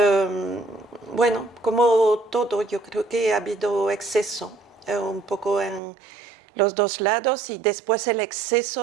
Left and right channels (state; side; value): drops out; left; at 5.8 s